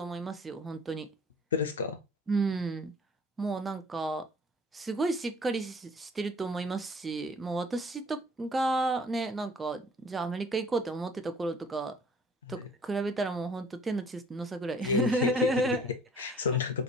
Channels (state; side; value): normal; both; correlation 0.53